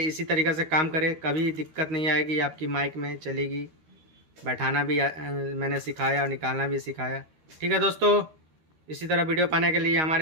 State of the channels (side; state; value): left; late; 13 ms